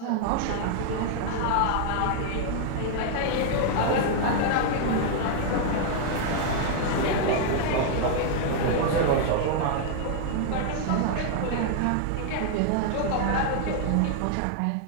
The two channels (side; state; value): both; different; correlation 0.00